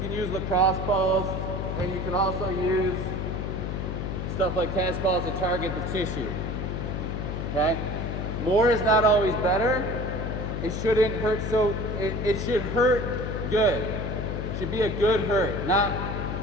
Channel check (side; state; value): left; noise; hum, 3 dB below the sound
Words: use lacrosse balls, and you can also use stuff like tennis balls to target the tissue, okay? More is not always better. It shouldn't hurt, so it should hurt good. It should be a good hurt, not,